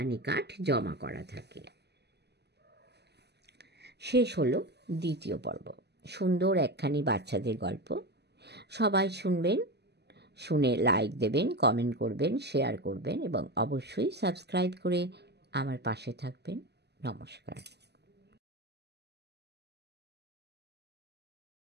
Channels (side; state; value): left; late; 0.49 ms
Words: কাঠ জমা করা থাকে। শেষ হলো 2য় পর্ব। সুন্দর একখানি বাচ্চাদের গল্প। সবাই শুনবেন, শুনে লাইক দেবেন, কমেন্ট করবেন, শেয়ার করবেন এবং অবশ্যই সাবস্ক্রাইব করে আমার পাশে থাকবেন। নমস্কার।